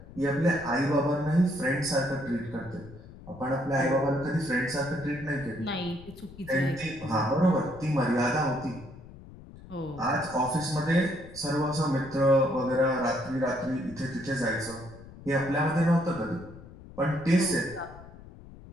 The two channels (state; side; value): noise; left; rumble, 18 dB below the sound